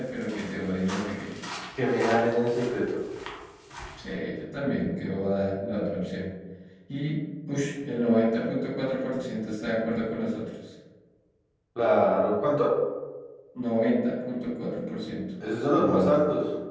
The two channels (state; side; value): identical; both; correlation 1.00